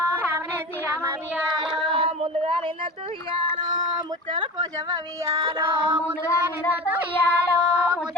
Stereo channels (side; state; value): both; normal; correlation 0.32